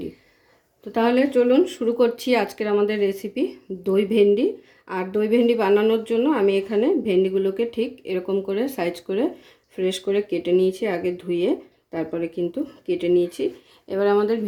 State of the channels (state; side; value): identical; both; correlation 1.00